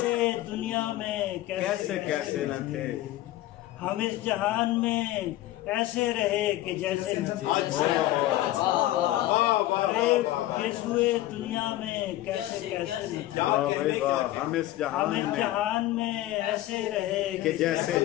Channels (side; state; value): right; quieter; 15.5 dB